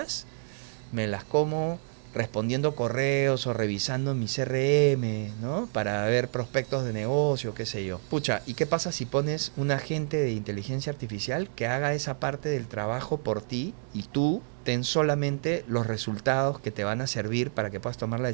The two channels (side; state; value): left; silent; 59 dB below the other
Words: me las como respondiendo correos o revisando mi CRM, ¿no? Para ver prospectos de negocio, qué sé yo. Pucha, ¿y qué pasa si pones un agente de inteligencia artificial que haga esa parte del trabajo por ti y tú ten solamente los resultados que te van a servir para que puedas tomar la